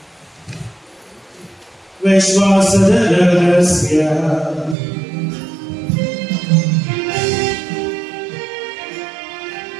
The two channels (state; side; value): drops out; left; at 4.8 s